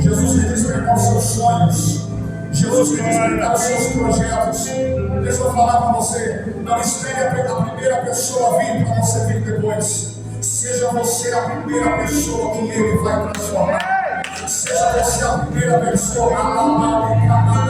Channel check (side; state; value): both; identical; correlation 1.00